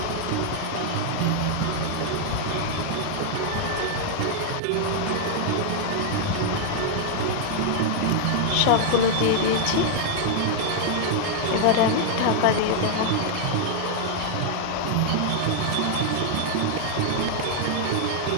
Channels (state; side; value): different; both; correlation -0.01